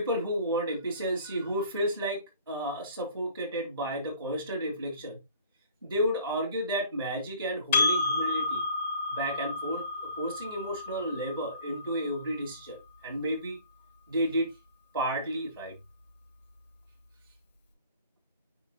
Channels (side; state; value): both; inverted; correlation -0.51